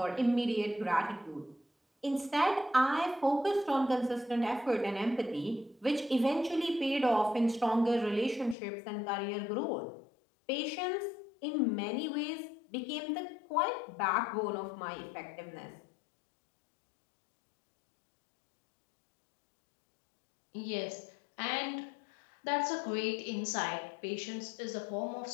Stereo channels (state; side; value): drops out; right; at 8.6 s